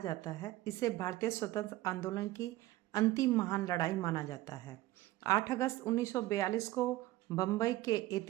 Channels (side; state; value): left; quieter; 16.7 dB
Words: है। इसे भारतीय स्वतंत्र आंदोलन की अंतिम महान लड़ाई माना जाता है। 8 अगस्त 1942 को बम्बई के